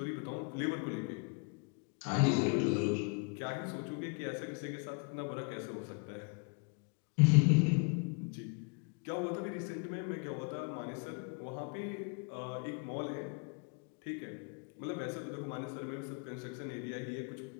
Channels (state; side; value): quieter; right; 36.7 dB